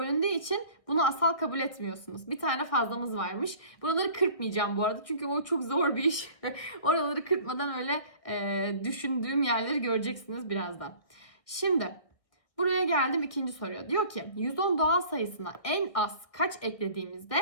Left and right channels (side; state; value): right; late; 1.5 ms